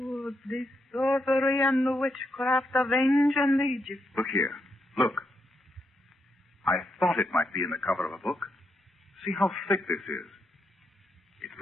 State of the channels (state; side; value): normal; both; correlation 0.81